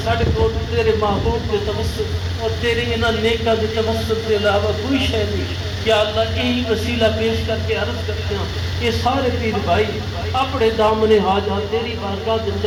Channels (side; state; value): both; identical; correlation 1.00